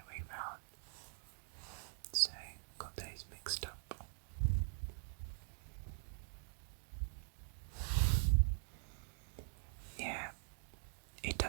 way round. So, got those mixed up. Yeah, it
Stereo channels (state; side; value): silent; left; digital silence